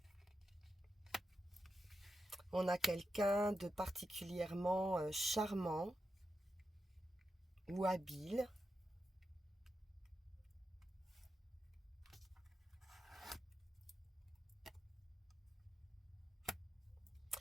On a quelqu'un de particulièrement charmant ou habile.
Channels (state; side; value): normal; both; correlation 0.88